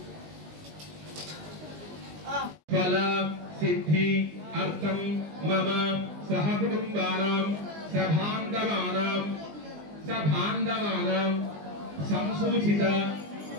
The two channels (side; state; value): left; late; 20 ms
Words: फल सिद्धि अर्थम मम सहकुटुंबानां सभांधवानां संसूचित